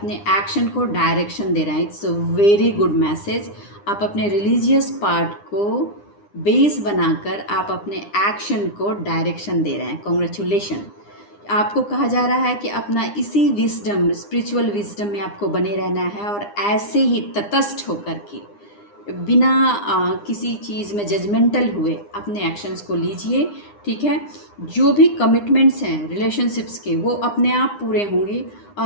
एक्शन को डायरेक्शन दे रहे हैं। It's a very good message. आप अपने रिलीजियस पार्ट को बेस बनाकर आप अपने एक्शन को डायरेक्शन दे रहे हैं। कॉन्ग्रेचुलेशन। आपको कहा जा रहा है कि अपना इसी विजडम, स्पिरिचुअल विजडम में आपको बने रहना है और ऐसे ही तटस्थ होकर के बिना किसी चीज़ में जजमेंटल हुए अपने एक्शंस को लीजिए, ठीक है। जो भी कमिटमेंट्स हैं रिलेशनशिप्स के वो अपने आप पूरे होंगे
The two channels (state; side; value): late; right; 9.8 ms